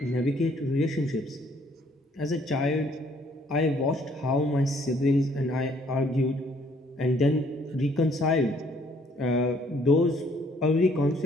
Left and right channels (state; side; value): normal; both; correlation 0.63